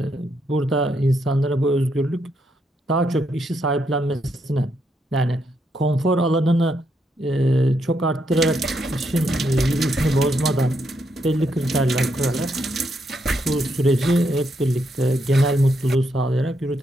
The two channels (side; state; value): both; normal; correlation 0.78